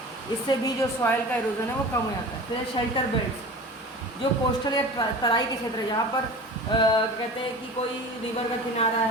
इससे भी जो सॉइल का इरोजन है वो कम हो जाता है। फिर शेल्टर बेल्ट्स, जो कोस्टल या तराई के क्षेत्र है, जहाँ पर कहते हैं कि कोई रिवर का किनारा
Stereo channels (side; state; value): both; normal; correlation 0.37